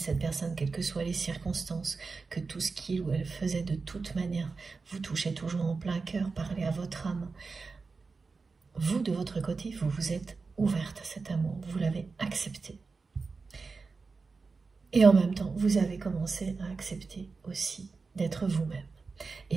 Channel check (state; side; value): quieter; left; 4.4 dB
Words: personne, quelles que soient les circonstances, que tout ce qu'il ou elle faisait de toute manière vous touchait toujours en plein cœur, parlait à votre âme. Vous, de votre côté, vous vous êtes ouverte à cet amour, vous l'avez accepté. Et en même temps, vous avez commencé à accepter aussi d'être vous-même